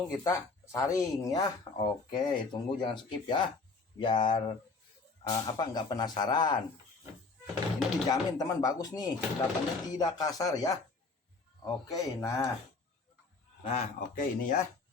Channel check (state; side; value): quieter; right; 4.0 dB